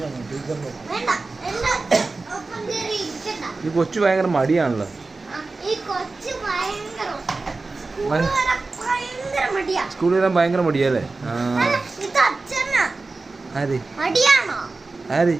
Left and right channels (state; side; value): quieter; left; 3.6 dB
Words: ടീച്ചറിന്റെ. വേണ്ട, ഒപ്പം കയറി ഇരിക്കണ്ട. ഈ കൊച്ചു ഭയങ്കര മടിയാണല്ലോ. ഈ കൊച്ചു ഭയങ്കര മടിയാ. സ്കൂളിൽ വരാൻ ഭയങ്കര മടിയല്ലേ? ഇത് അച്ഛനാ. ആര് മടിയാണോ ആര്?